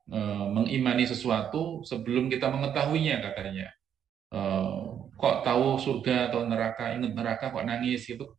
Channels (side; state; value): left; quieter; 8.9 dB